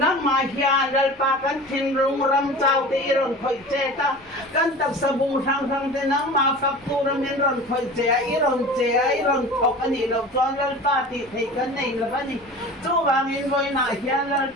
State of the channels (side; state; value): both; normal; correlation 0.37